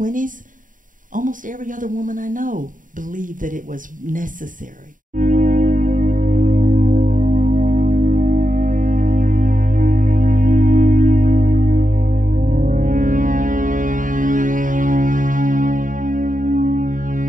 almost every other woman I know believed that it was necessary.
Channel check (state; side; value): late; left; 0.39 ms